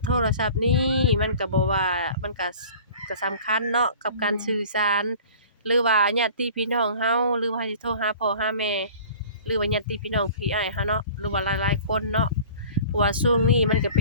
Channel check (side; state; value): both; inverted; correlation -0.44